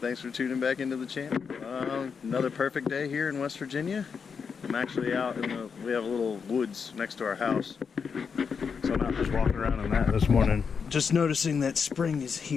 for tuning back into the channel. Another perfect day here in West Virginia. I'm actually out in we have a little woods next to our house. So I'm out just walking around in that this morning. Just noticing that spring is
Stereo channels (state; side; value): quieter; right; 6.0 dB